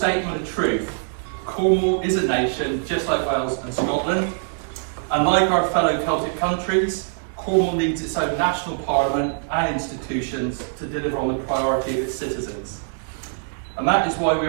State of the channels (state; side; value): silent; left; digital silence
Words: of truth. Cornwall is a nation, just like Wales and Scotland. And like our fellow Celtic countries, Cornwall needs its own national parliament and institutions to deliver on the priority of its citizens. And that is why we